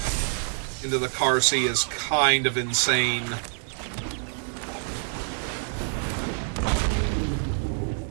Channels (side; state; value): left; silent; 61 dB below the other